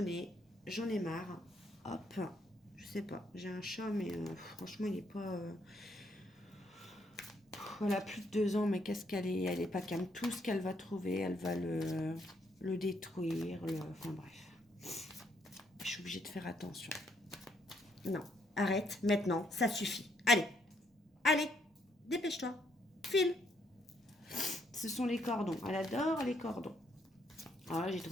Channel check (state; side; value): normal; both; correlation 0.72